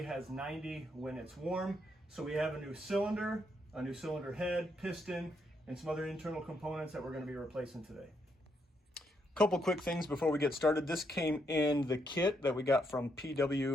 has 90 when it's warm. So we have a new cylinder head, piston, and some other internal components that we're going to be replacing today. Couple quick things before we get started. This came in the kit that we got from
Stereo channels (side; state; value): both; normal; correlation 0.77